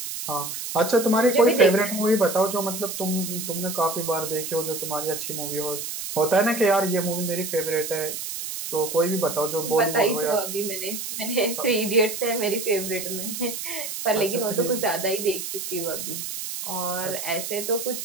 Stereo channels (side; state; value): right; noise; hiss, 6 dB below the sound